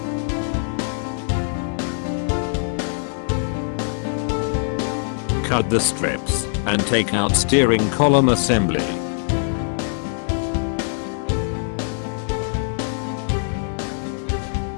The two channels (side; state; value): right; silent; digital silence